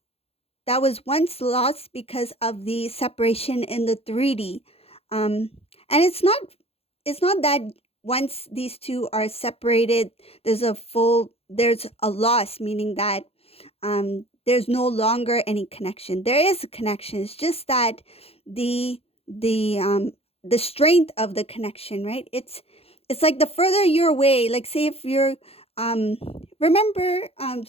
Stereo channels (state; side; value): late; right; 0.29 ms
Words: was once lost because of the separation in the 3D. Um, and it's not that once these two are separated, there's a loss, meaning that there's no longer any connection. There is a connection. It's just that the the um, the strength of the connection, right? It's like the further you're away. Like say if you're um, remember